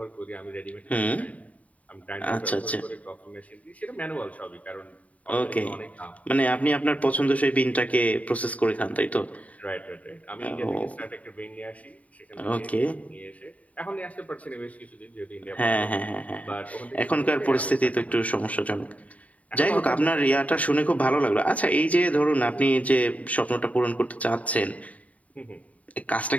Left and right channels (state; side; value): late; right; 0.069 ms